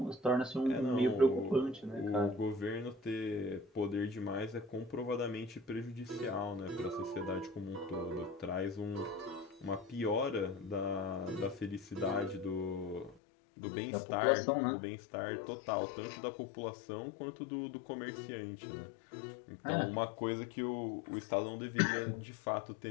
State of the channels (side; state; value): right; drops out; at 13.2 s